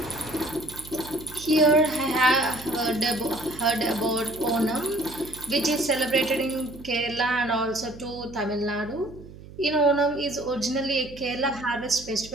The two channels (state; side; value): noise; right; hum, 17 dB below the sound